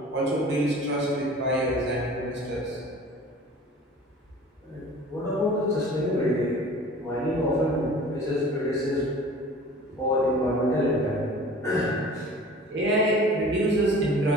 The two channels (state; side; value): normal; both; correlation 0.44